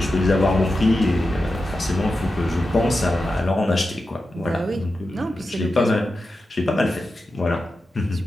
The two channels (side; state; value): both; normal; correlation 0.91